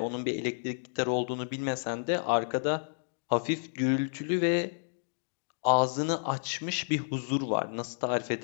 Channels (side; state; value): right; silent; digital silence